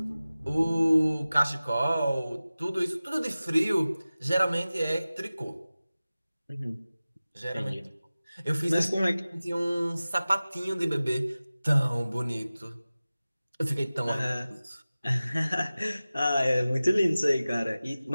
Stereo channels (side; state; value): both; inverted; correlation -0.97